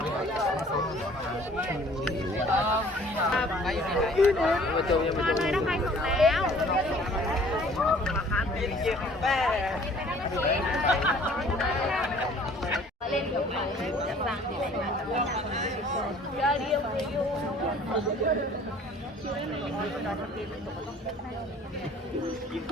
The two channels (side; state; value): both; normal; correlation 0.53